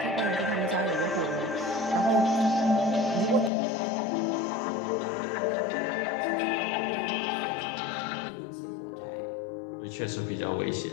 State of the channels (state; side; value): drops out; right; at 3.5 s